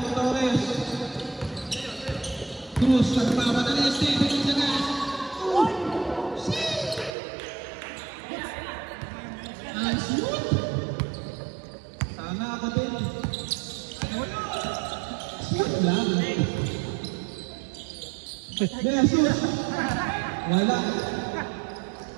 ni Torres. Cruz, nagpapadali. Stephen Gonzalez. Ang shoot! Sana ako din. Shoot lang. Jesus! Wala.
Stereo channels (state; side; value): drops out; left; at 7.2 s